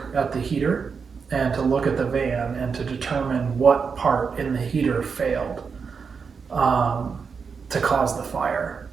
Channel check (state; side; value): quieter; left; 5.7 dB